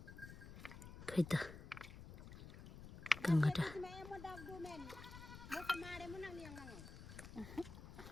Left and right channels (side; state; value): left; noise; rumble, 12 dB below the sound